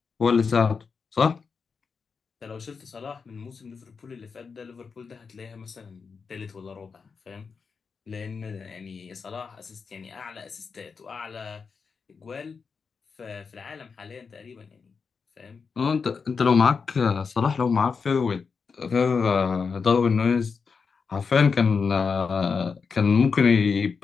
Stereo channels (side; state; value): right; quieter; 5.4 dB